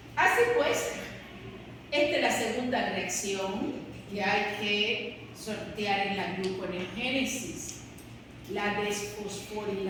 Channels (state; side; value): identical; both; correlation 1.00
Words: Así pues, esta es la segunda reacción que hay que sortear en la gluconeogénesis. La